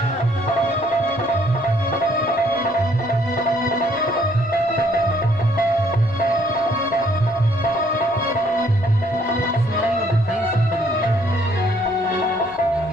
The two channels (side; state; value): both; normal; correlation 0.65